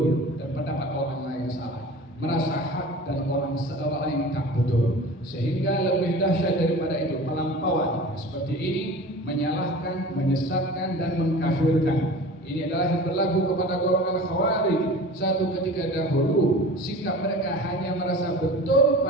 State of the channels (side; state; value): both; normal; correlation 0.38